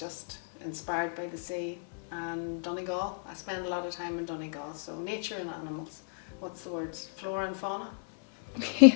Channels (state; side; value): silent; right; 55 dB below the other